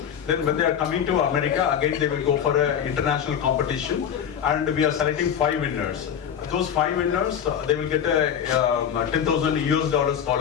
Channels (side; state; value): right; quieter; 8.5 dB